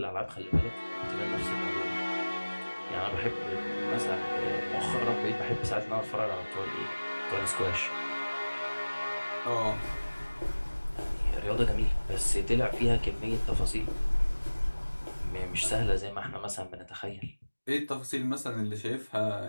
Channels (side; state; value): both; inverted; correlation -1.00